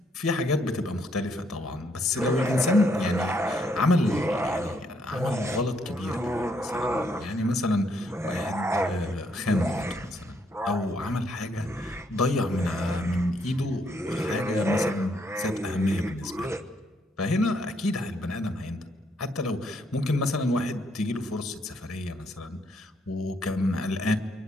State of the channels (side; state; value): both; normal; correlation 0.72